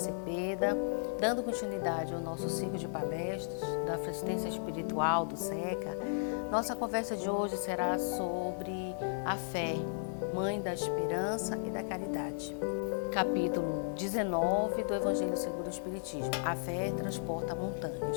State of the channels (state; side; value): silent; right; digital silence